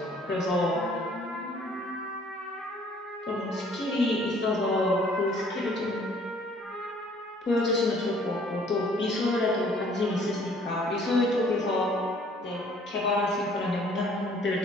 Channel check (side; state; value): both; normal; correlation 0.58